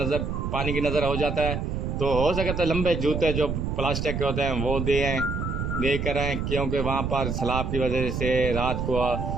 की नज़र हो जाता है। तो हो सके तो लंबे जूते जो प्लास्टिक के होते हैं वो दे कर आएँ क्योंकि वहाँ पर सलाब की वजह से रात को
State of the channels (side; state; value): right; noise; rumble, 2 dB below the sound